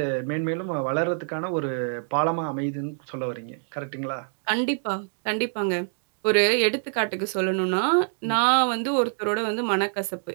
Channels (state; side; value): silent; left; 61 dB below the other